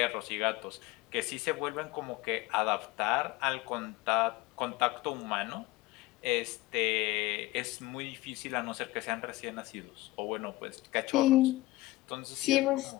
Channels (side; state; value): right; quieter; 19.4 dB